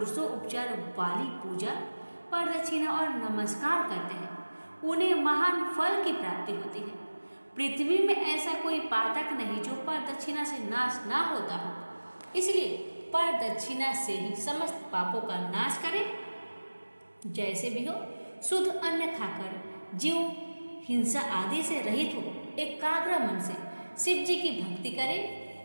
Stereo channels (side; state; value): both; inverted; correlation -1.00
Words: उपचार वाली पूजा, प्रदक्षिणा और नमस्कार करते हैं उन्हें महान फल की प्राप्ति होती है। पृथ्वी में ऐसा कोई पातक नहीं जो प्रदक्षिणा से नाश ना होता हो, इसलिए प्रदक्षिणा से ही समस्त पापों का नाश करें। जैसे भी हो, शुद्ध अन्न खाकर जीव हिंसा आदि से रहित हो, एकाग्र मन से शिव जी की भक्ति करे,